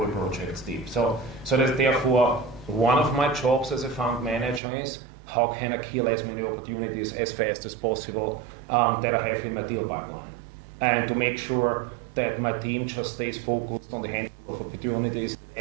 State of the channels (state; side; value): drops out; left; at 4.6 s